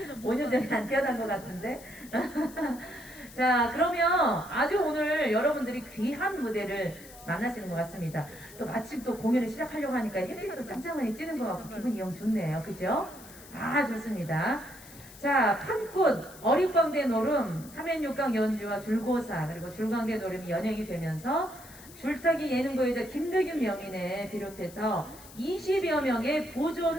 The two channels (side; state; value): left; noise; hiss, 19 dB below the sound